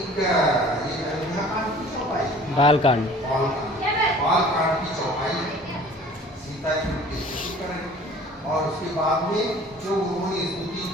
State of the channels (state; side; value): normal; both; correlation 0.48